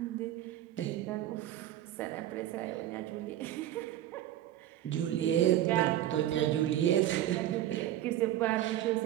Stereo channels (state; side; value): quieter; left; 12.7 dB